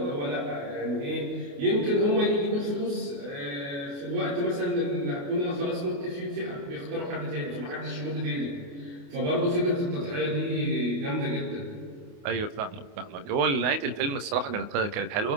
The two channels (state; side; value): late; left; 28 ms